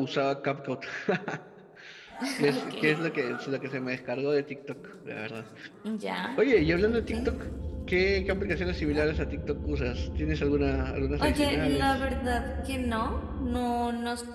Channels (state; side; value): identical; both; correlation 1.00